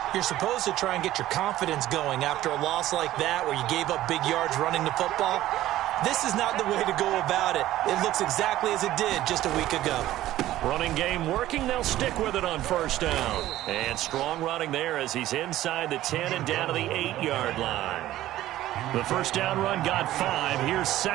You're supposed to try and get your confidence going after a loss like that where you gave up big yards running the football. This is not the way to go about it. It looks exactly as it did just a week ago. Running game working. They'll stick with it on first down. And strong running there as he's inside the 10 and down to the 8-yard line. The first down run got 5. Here's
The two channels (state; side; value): quieter; left; 14.5 dB